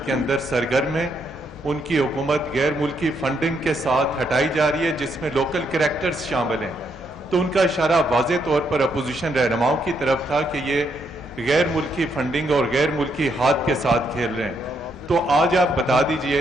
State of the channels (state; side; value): normal; both; correlation 0.76